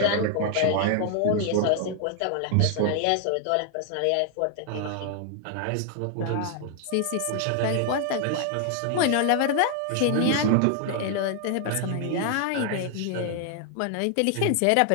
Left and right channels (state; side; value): different; both; correlation 0.00